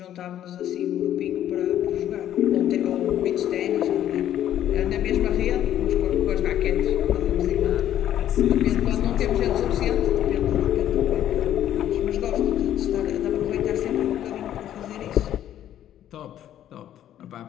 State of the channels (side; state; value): right; quieter; 11.4 dB